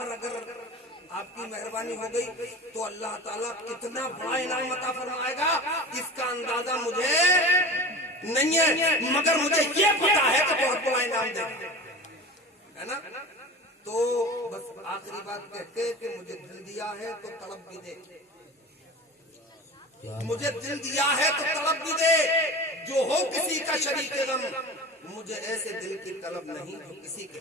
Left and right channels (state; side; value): normal; both; correlation 0.33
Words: अगर आपकी मेहरबानी हो गई तो अल्लाह ताला कितना बड़ा इनाम अता फरमाएगा, इसका अंदाजा मुझे नहीं है, मगर मुझे ये पता है कि बहुत बड़ा इनाम देगा, है ना। तो बस आखिरी बात कहते कि मुझे दिल दिया है तो तड़प भी दे, मुझे दिल दिया है तो तलब भी दे, जो हो किसी का शरीक गम, मुझे ऐसे दिल की तलब नहीं जो किसी के